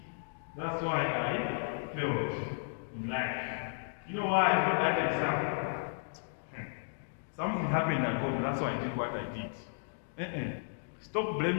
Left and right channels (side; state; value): right; silent; digital silence